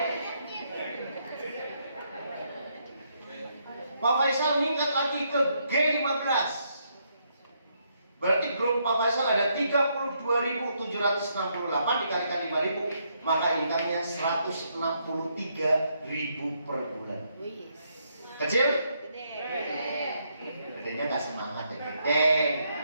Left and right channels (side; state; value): both; inverted; correlation -0.75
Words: Pak Faisal meningkat lagi ke G15, berarti grup Pak Faisal ada 32.768 dikalikan 5.000, maka income-nya 163.000 per bulan. Kecil? Gedenya gak semangat ya.